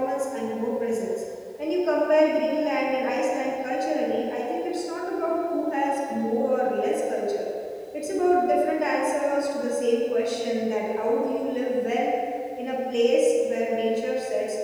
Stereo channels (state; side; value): identical; both; correlation 1.00